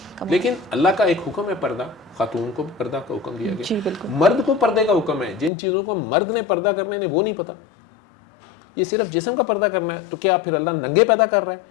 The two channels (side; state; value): right; drops out; at 5.5 s